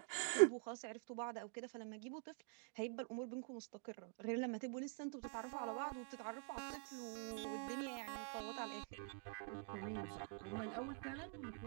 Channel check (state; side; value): quieter; left; 38.8 dB